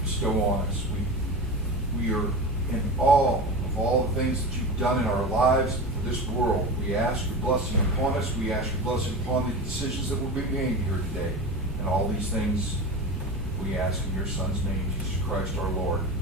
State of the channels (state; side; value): normal; both; correlation 0.27